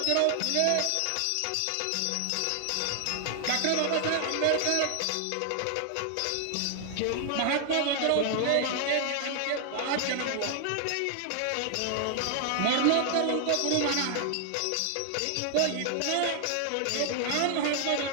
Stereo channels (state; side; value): different; both; correlation 0.00